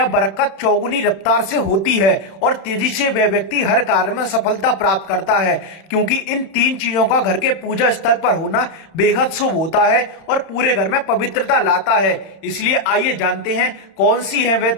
बरकत चौगुनी रफ्तार से होती है और तेजी से वह व्यक्ति हर कार्य में सफलता प्राप्त करता है। क्योंकि इन तीन चीजों का घर के पूजा स्थल पर होना बेहद शुभ होता है और पूरे घर में पवित्रता लाता है। इसलिए आइए जानते हैं कौन सी है वह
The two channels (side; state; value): right; late; 31 ms